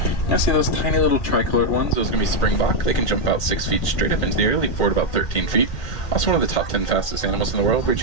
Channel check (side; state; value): right; late; 1.9 ms